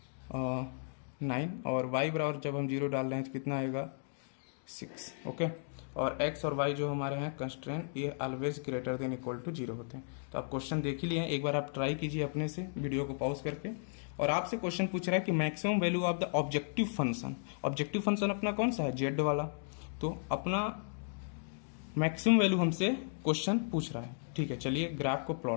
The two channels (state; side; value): silent; right; digital silence